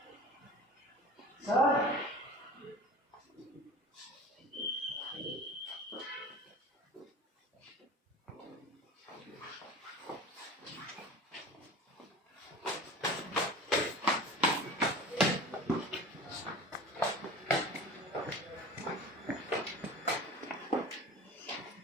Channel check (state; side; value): normal; both; correlation 0.37